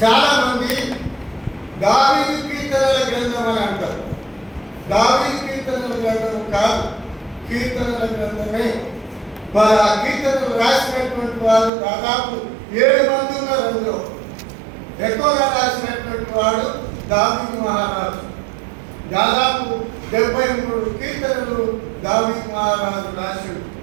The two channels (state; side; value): drops out; left; at 11.7 s